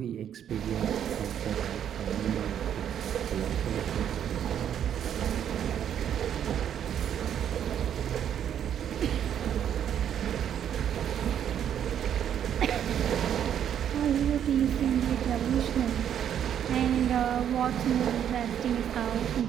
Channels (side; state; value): left; quieter; 9.5 dB